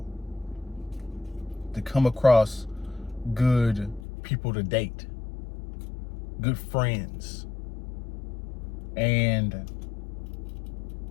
to come across good people to date, good friends. And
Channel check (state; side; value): drops out; right; at 4.0 s